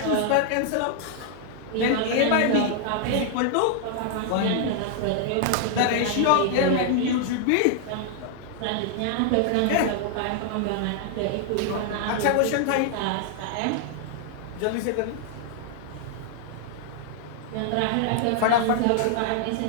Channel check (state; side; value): different; both; correlation -0.01